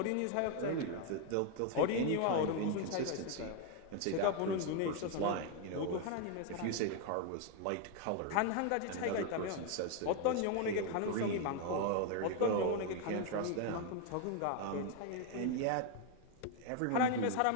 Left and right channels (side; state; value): both; different; correlation 0.01